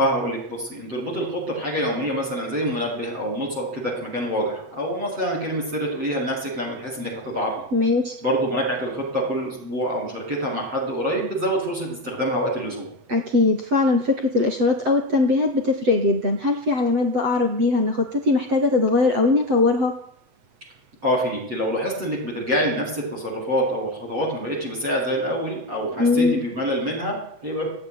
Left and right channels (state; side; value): late; left; 8.2 ms